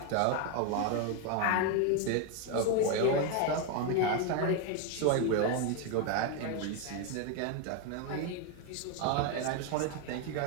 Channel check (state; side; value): different; both; correlation 0.01